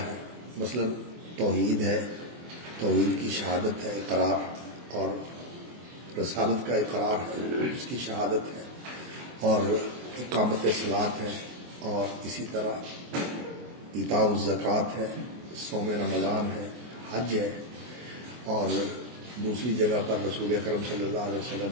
مثلا توحید ہے، توحید کی شہادت ہے، اقرار اور رسالت کا اقرار ہے، اس کی شہادت ہے، اور اقامت صلاۃ ہے، اور اسی طرح ایتاء الزکوٰۃ ہے، صوم رمضان ہے، حج ہے، اور دوسری جگہ پر رسول اکرم صلی اللہ علیہ وسلم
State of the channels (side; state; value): left; late; 24 ms